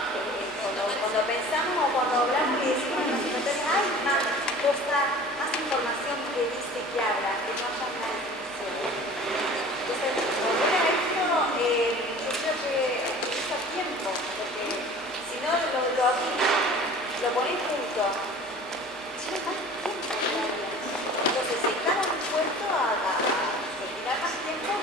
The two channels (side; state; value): both; normal; correlation 0.43